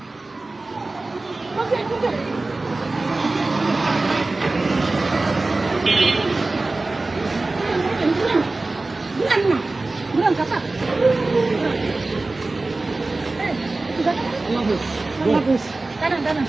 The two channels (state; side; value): quieter; left; 3.2 dB